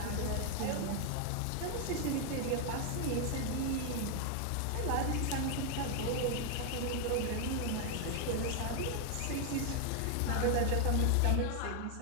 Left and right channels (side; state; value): both; different; correlation 0.00